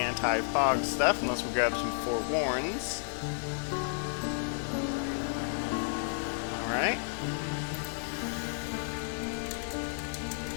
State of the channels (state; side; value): silent; right; 56 dB below the other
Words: anti-fog stuff unless we grab some forewarns. Alright.